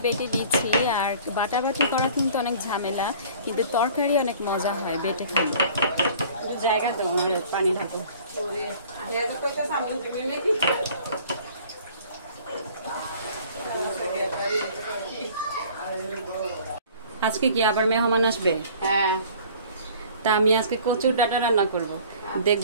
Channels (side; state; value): both; inverted; correlation -0.49